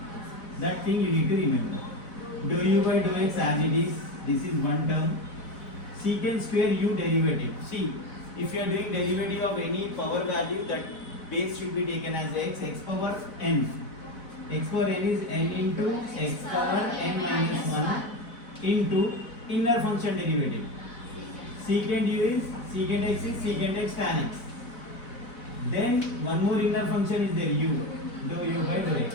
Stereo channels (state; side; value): late; right; 4.0 ms